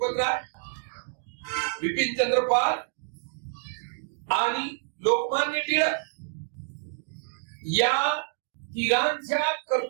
राय, बिपिन चंद्र पाल आणि लोकमान्य टिळक या तिघांच्या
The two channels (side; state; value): left; silent; digital silence